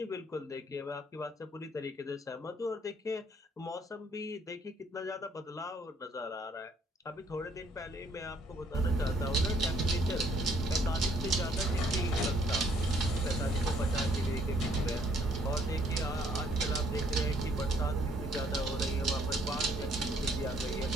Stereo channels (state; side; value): normal; both; correlation 0.64